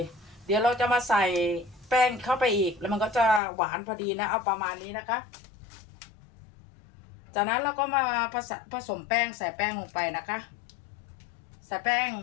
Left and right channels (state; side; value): drops out; right; at 3.4 s